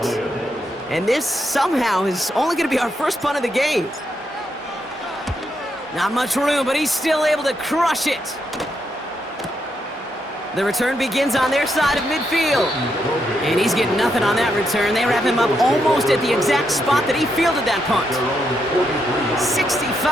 And this somehow is only gonna be our first punt of the game. Not much room, but he's still able to crush it. The return begins on their side of midfield. And he's getting nothing on that return. They wrap him up almost at the exact spot that he fielded that punt.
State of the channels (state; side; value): normal; both; correlation 0.80